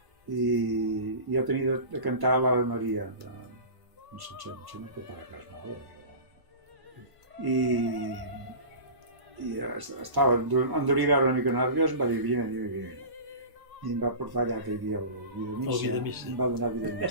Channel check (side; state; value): left; late; 1.1 ms